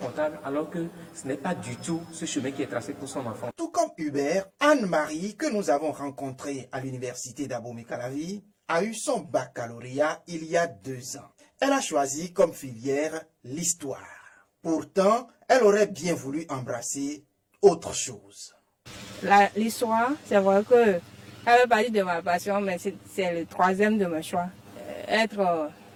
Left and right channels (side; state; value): both; identical; correlation 1.00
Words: alors que ce n'est pas du tout ce chemin qui est tracé pour son enfant. Tout comme Hubert, Anne-Marie, que nous avons rencontrée à l'université d'Abomey-Calavi, a eu son baccalauréat il y a 2 ans. Elle a choisi comme filière l'histoire. Pourtant, elle aurait bien voulu embrasser autre chose. L'histoire, c'est vrai que elle fait partie de ma passion, mais c'est le 3e de mon choix. Être